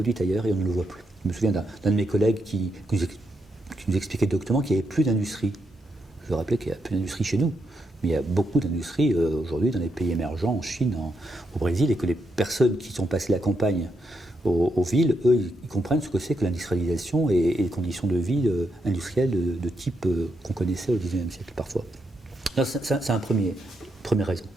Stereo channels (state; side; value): normal; both; correlation 0.81